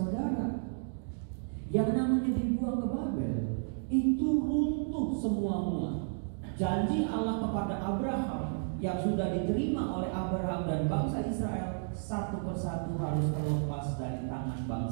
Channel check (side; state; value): left; silent; digital silence